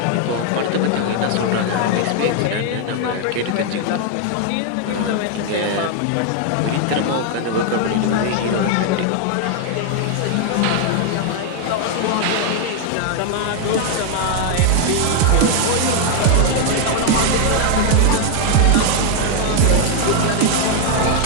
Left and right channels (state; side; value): different; both; correlation 0.00